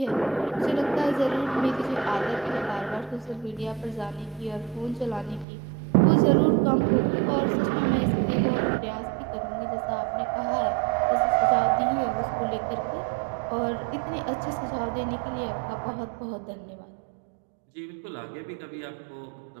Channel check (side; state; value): left; drops out; at 5.5 s